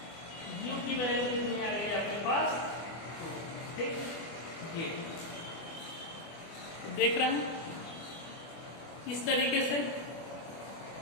u की वैल्यू कितनी आ गई आपके पास, 2। ठीक, ये देख रहे हैं इस तरीके से।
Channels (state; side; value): late; right; 24 ms